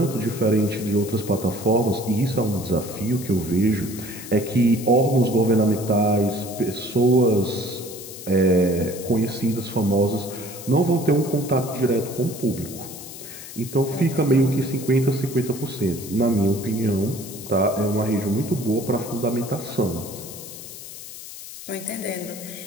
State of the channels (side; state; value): left; noise; hiss, 13 dB below the sound